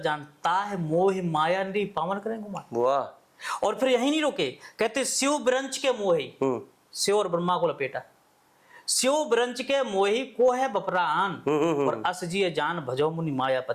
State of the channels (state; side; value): identical; both; correlation 1.00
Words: ताह मोह माया निरी पावन करें गुमान। वाह। और फिर यही नहीं रोके, कहते शिव ब्रंच के मोही, शिव और ब्रह्मा को लपेटा, शिव ब्रंच के मोही को है बपरान, और अस जिये जान भजो मुनि